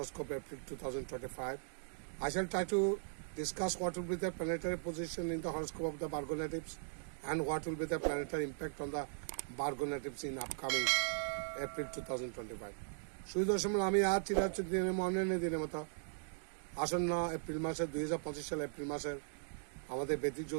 April 2025. I shall try to discuss what will be the planetary position in the horoscope of the Virgo natives and what will be the planetary impact on the Virgo natives in upcoming April 2025. সুদর্শন আমি আজ চিরাচর দিনের মনের দিনের মতো আসন্ন April মাসের 2025 সালে April মাসের আমাদের বৈদিক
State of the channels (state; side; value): silent; left; digital silence